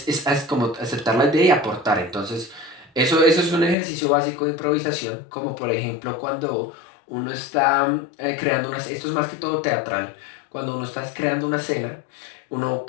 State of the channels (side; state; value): right; drops out; at 3.8 s